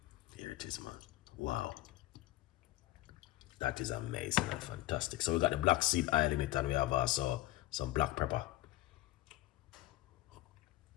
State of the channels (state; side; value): quieter; right; 16.6 dB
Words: Here it is, man. Wow. That is amazing and fantastic. So we got the black seed oil in it, and we have also some black pepper.